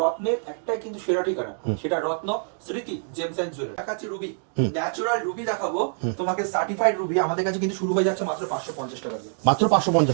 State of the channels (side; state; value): left; silent; digital silence